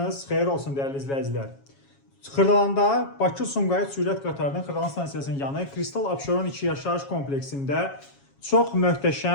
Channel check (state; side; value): late; right; 7.3 ms